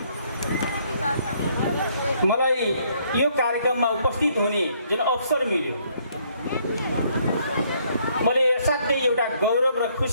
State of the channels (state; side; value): inverted; both; correlation -0.67